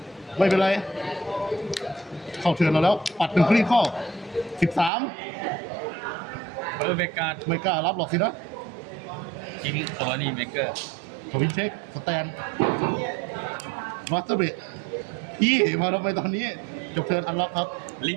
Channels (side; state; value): left; drops out; at 4.9 s